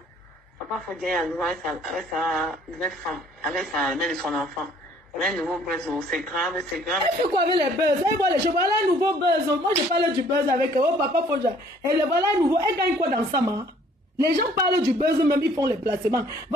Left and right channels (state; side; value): normal; both; correlation 0.58